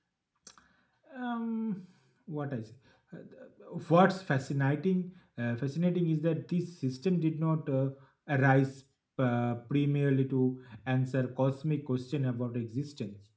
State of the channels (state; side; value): identical; both; correlation 1.00